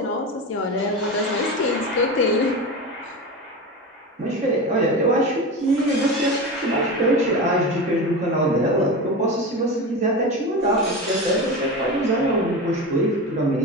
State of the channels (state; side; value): normal; both; correlation 0.24